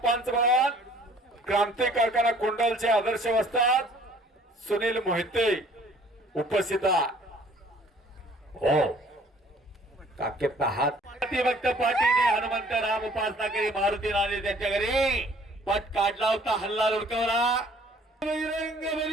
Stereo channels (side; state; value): both; normal; correlation 0.55